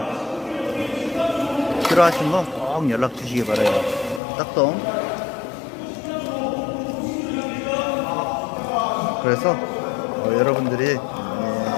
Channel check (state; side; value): drops out; right; at 4.2 s